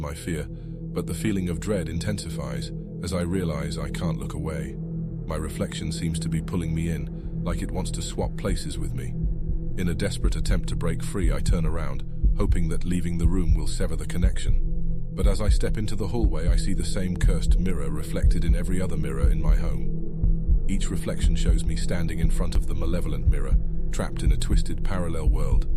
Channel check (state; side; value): identical; both; correlation 1.00